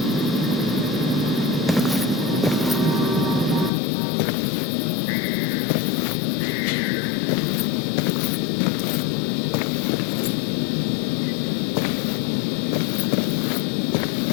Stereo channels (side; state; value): right; drops out; at 3.7 s